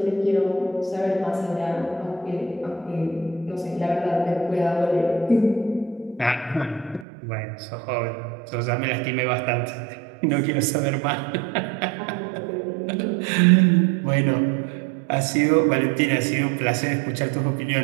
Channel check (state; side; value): drops out; left; at 7.1 s